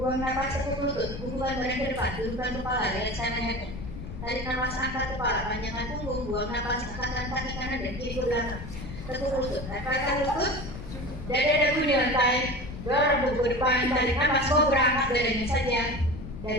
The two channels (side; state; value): left; noise; rumble, 10 dB below the sound